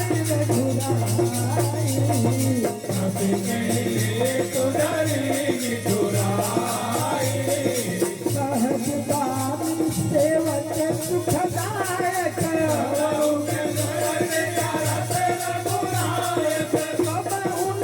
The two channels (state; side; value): identical; both; correlation 1.00